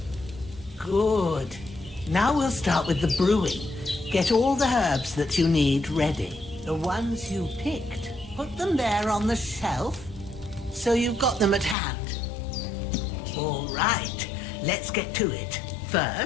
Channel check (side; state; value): right; drops out; at 11.8 s